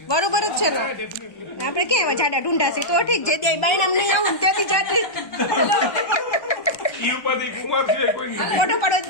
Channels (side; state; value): right; late; 1.2 ms